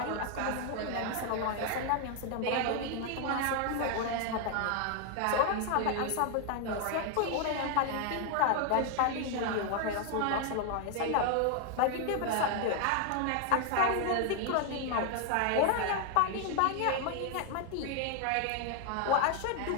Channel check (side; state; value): both; different; correlation 0.00